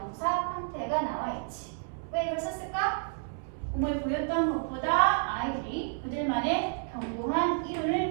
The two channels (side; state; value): left; silent; 57 dB below the other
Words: 형태가 나와 있지. 왜 이걸 썼을까? 공부에 보였던 것보다 아이들이 그들만의 견고한